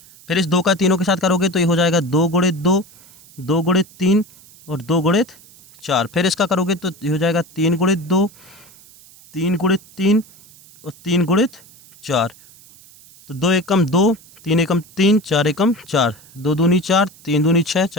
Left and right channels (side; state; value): right; noise; hiss, 24 dB below the sound